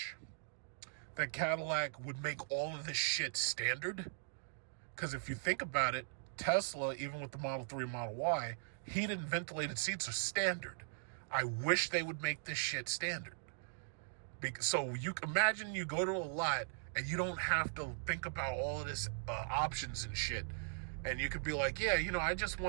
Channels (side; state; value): left; silent; digital silence